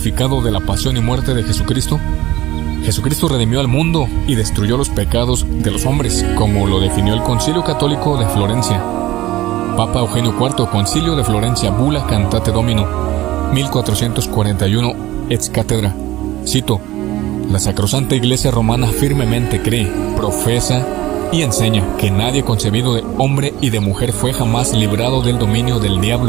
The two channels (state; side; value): quieter; left; 16.6 dB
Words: de la pasión y muerte de Jesucristo? Jesucristo redimió al mundo y destruyó los pecados de los hombres, como lo definió el Concilio Católico de Florencia. Papa Eugenio IV, Concilio de Florencia, Bula Cantate Domino, 1441, ex cátedra. Cito: la Sacrosanta Iglesia Romana firmemente cree, profesa y enseña que nadie concebido de hombre y de mujer fue jamás librado del dominio del